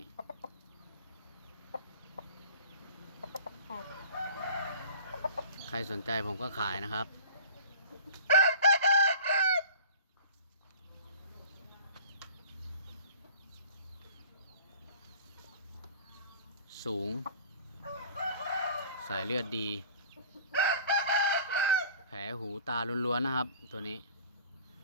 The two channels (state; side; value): inverted; both; correlation -0.43